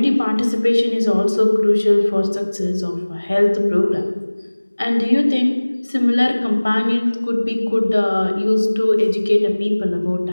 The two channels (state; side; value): inverted; both; correlation -1.00